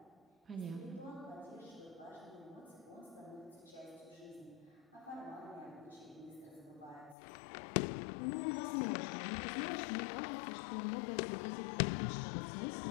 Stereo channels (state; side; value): drops out; right; at 7.2 s